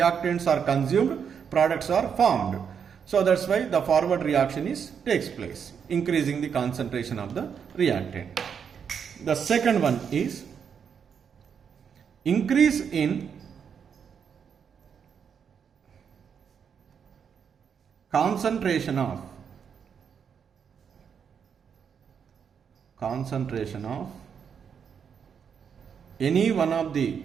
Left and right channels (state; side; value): quieter; left; 7.2 dB